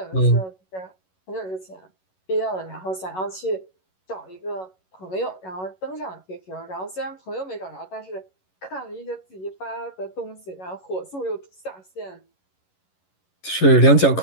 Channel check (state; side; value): late; right; 11 ms